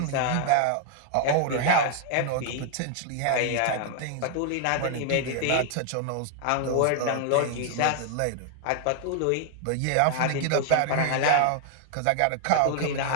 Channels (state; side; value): different; both; correlation 0.00